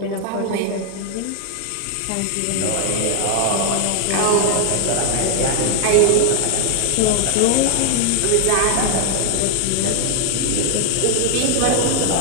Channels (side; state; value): both; different; correlation 0.00